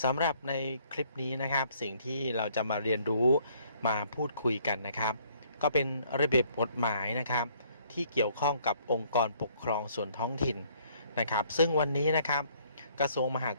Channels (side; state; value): both; inverted; correlation -0.63